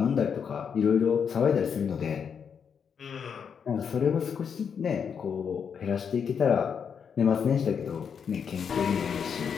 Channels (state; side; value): quieter; right; 7.0 dB